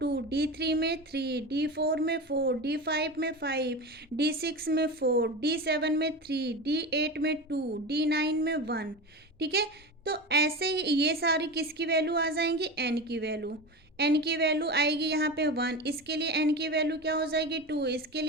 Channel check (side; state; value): both; normal; correlation 0.25